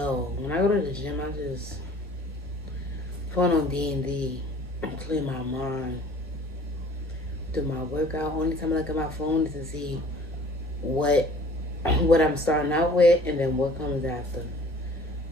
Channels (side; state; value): both; normal; correlation 0.51